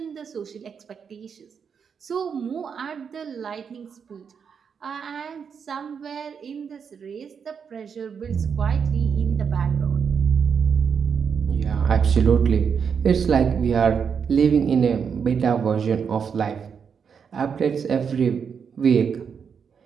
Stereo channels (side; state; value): left; quieter; 6.7 dB